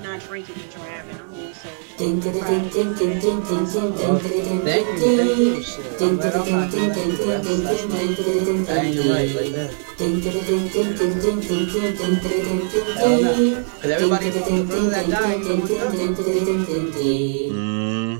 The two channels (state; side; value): silent; left; 64 dB below the other